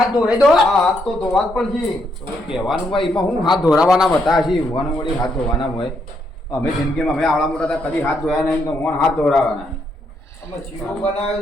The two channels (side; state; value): both; normal; correlation 0.76